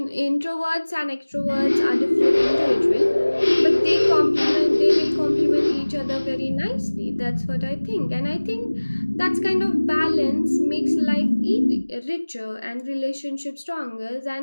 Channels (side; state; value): both; inverted; correlation -1.00